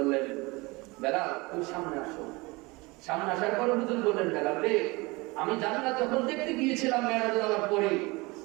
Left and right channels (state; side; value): quieter; left; 24.4 dB